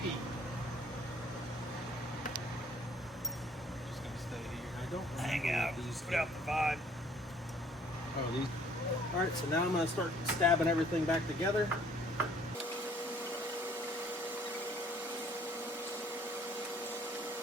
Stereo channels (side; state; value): both; normal; correlation 0.59